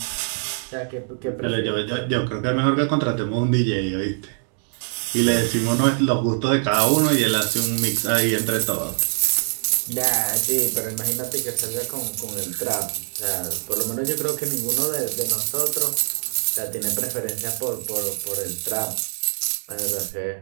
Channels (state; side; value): silent; left; digital silence